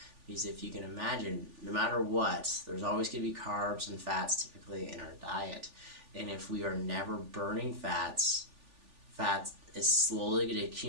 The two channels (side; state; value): left; late; 3.4 ms